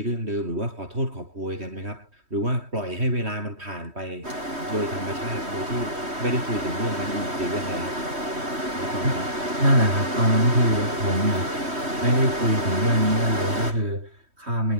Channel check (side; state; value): left; late; 3.1 ms